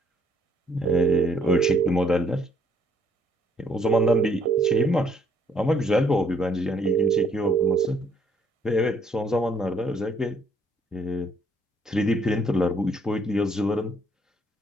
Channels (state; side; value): normal; both; correlation 0.65